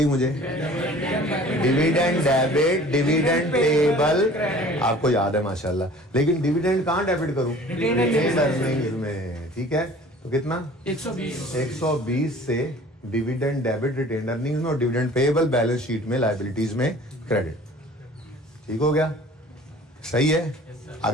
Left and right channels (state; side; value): normal; both; correlation 0.47